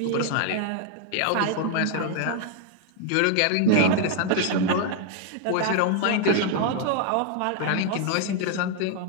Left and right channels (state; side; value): different; both; correlation 0.01